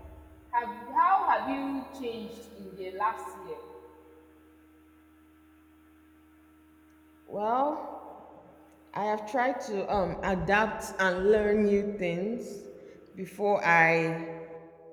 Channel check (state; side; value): identical; both; correlation 1.00